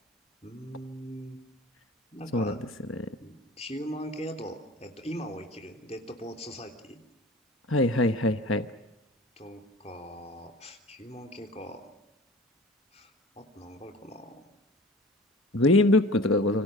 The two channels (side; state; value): both; normal; correlation 0.41